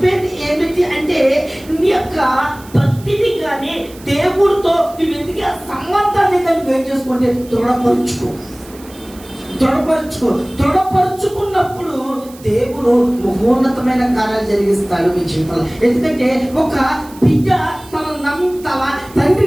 ఏమిటి అంటే, నీ యొక్క ప్రతిదీ కానీ దేవుడితో నువ్వు ఎందుకు ఆ సంబంధాన్ని కానీ వేరు చేసుకుంటే దృఢపరుచుకున్నప్పుడు దేవుడు మహోన్నతమైన కార్యాలు జరిగిస్తాడు మీ జీవితంలో. ఎందుకంటే ఒక బిడ్డ తన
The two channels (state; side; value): noise; right; hiss, 22 dB below the sound